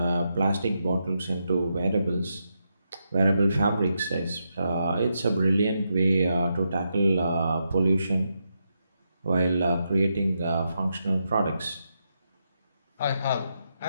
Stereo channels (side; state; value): both; inverted; correlation -0.83